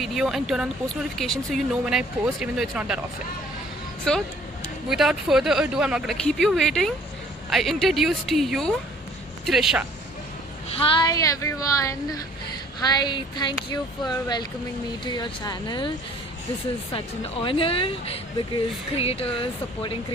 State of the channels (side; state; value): both; normal; correlation 0.56